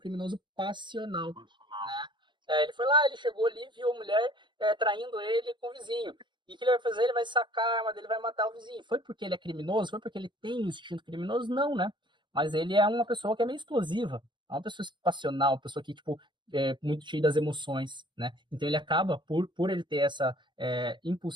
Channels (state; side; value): late; left; 0.22 ms